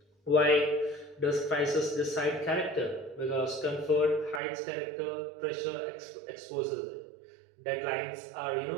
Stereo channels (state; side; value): drops out; left; at 4.4 s